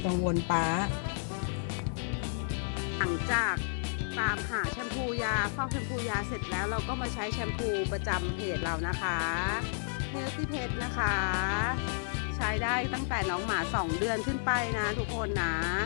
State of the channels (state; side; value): silent; right; digital silence